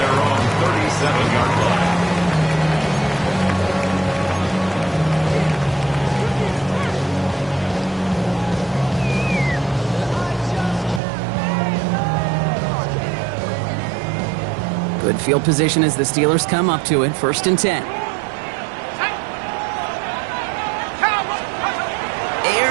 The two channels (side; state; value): left; drops out; at 11.0 s